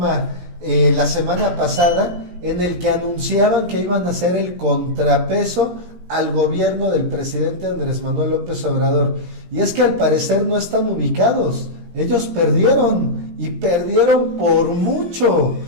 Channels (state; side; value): late; left; 17 ms